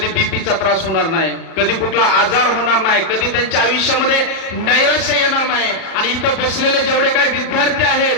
बीपीचा त्रास होणार नाही, कधी कुठला आजार होणार नाही, कधी त्यांच्या आयुष्यामध्ये नैराश्य येणार नाही. आणि इथं बसलेले जेवढे काही विद्यार्थी आहेत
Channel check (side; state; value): right; late; 37 ms